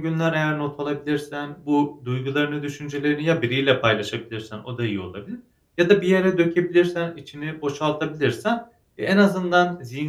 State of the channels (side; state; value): both; identical; correlation 1.00